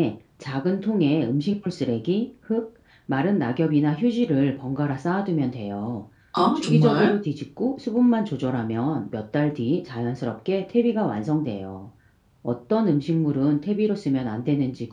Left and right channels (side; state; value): both; identical; correlation 1.00